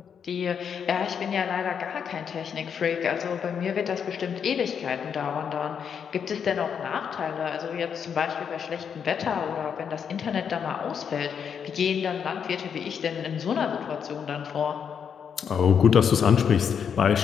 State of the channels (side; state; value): right; quieter; 7.3 dB